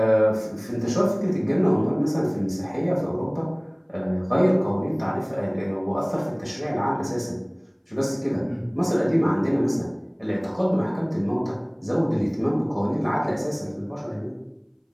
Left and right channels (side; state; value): both; identical; correlation 1.00